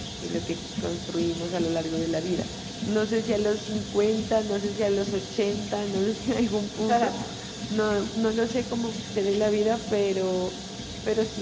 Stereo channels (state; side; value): identical; both; correlation 1.00